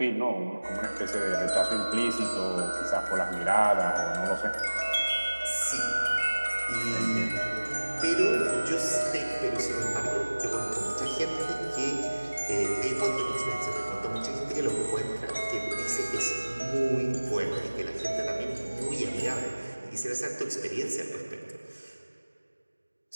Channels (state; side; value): inverted; both; correlation -1.00